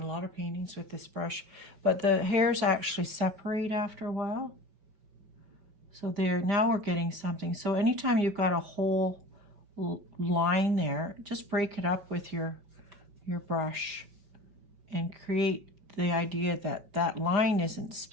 a lot of paintings with this brush, but the hairs actually separate after a while. So there, now we're getting something. So anytime you've got a whole line there, just break it up with your brush and create the idea that that line isn't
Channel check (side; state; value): left; late; 4.9 ms